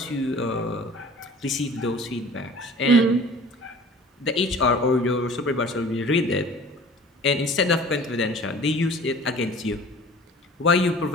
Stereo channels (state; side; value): normal; both; correlation 0.45